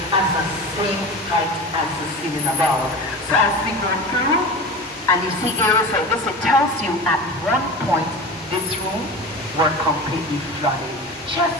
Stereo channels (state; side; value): normal; both; correlation 0.31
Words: as the same height as the ceiling above. So as we go through, and you see areas like this, it tells you at one point, this room were completely flooded. Just